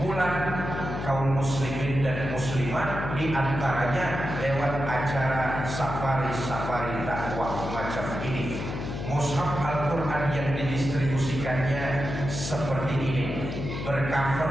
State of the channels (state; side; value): noise; left; hum, 5 dB below the sound